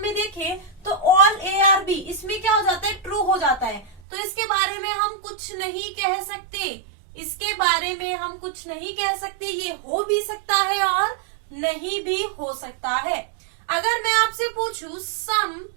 में देखें तो ऑल ए आर बी, इसमें क्या हो जाता है, ट्रू हो जाता है। तो इसके बारे में हम कुछ नहीं कह सकते, इसके बारे में हम कुछ नहीं कह सकते। ये हो भी सकता है और नहीं भी हो सकता है। अगर मैं आपसे पूछूं some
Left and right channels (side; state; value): left; drops out; at 4.0 s